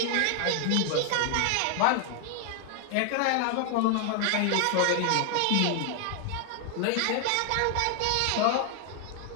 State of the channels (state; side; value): different; both; correlation 0.00